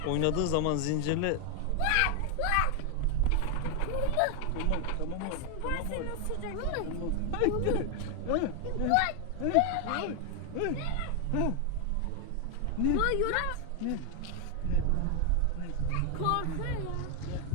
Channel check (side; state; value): both; different; correlation 0.00